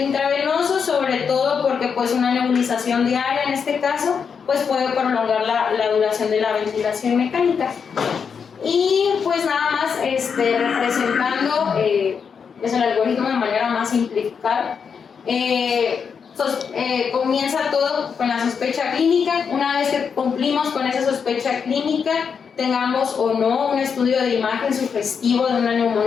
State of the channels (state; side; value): quieter; right; 6.4 dB